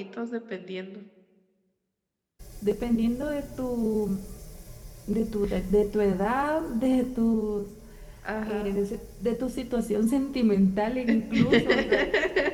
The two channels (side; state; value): both; identical; correlation 1.00